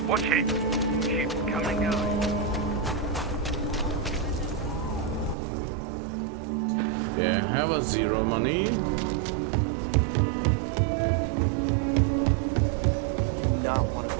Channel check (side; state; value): left; drops out; at 5.4 s